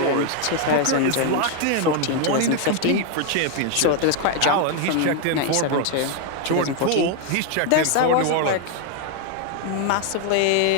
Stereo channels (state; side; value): different; both; correlation 0.00